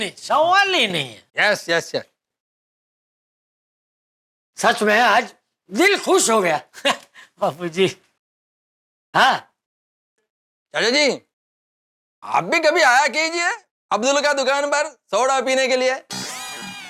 सवाल ही नहीं है। Yes yes yes. सच में आज दिल खुश हो गया। बापू जी। हाँ चाचा जी, आप भी कभी आया कीजिए अब्दुल का दुकान पर सोडा पीने के लिए।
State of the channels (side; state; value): both; identical; correlation 1.00